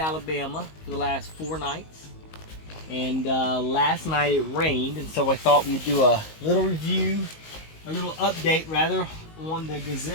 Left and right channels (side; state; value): right; late; 19 ms